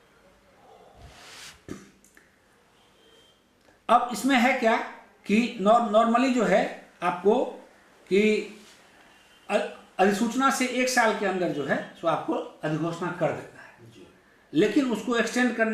अब इसमें है क्या कि नॉर्मली जो है आपको कि अधिसूचना से 1 साल के अंदर जो है सो आपको अधिघोषणा कर देता है, लेकिन उसको एक्सटेंड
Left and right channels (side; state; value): both; identical; correlation 1.00